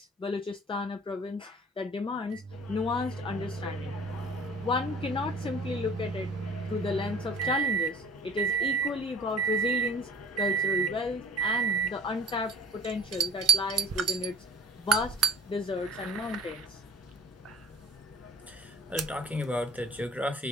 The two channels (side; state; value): both; normal; correlation 0.48